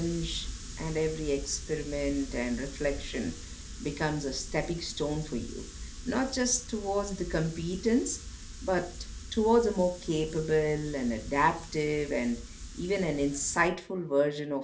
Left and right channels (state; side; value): identical; both; correlation 1.00